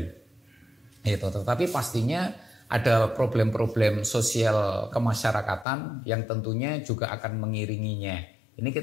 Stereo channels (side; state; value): right; drops out; at 5.7 s